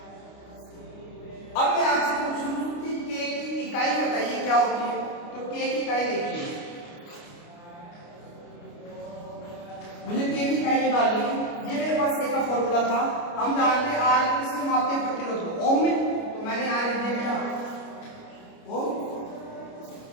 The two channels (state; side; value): late; right; 29 ms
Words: अब मैं आपसे पूछूं कि k की इकाई बताइए क्या होती है, तो k की इकाई देखिए, मुझे k की इकाई निकालनी है। ये मेरे पास k का फॉर्मूला था, हम जानते हैं r को किसमें मापते हैं, प्रतिरोध को ओम में, तो मैंने r लिख दिया क्या ओम।